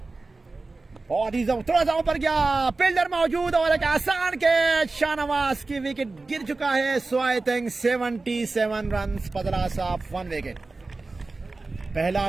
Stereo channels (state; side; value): quieter; left; 3.5 dB